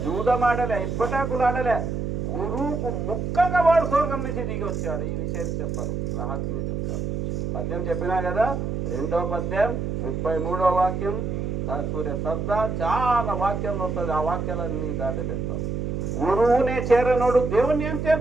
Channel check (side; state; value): right; noise; hum, 2 dB below the sound